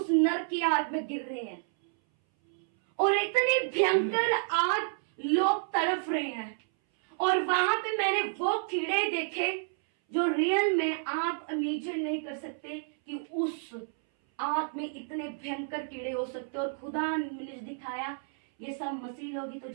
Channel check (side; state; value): left; silent; 58 dB below the other